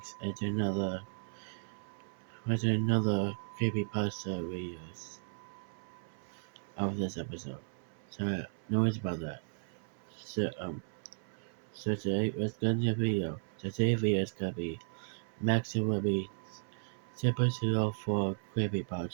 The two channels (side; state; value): left; silent; 54 dB below the other